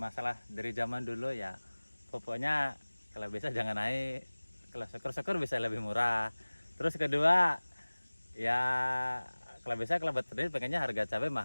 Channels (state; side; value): inverted; both; correlation -1.00